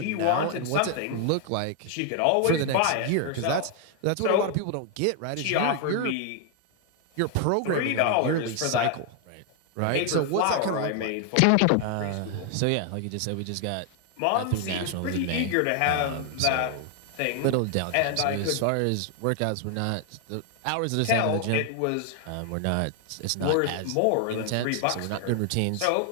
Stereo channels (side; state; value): both; different; correlation 0.00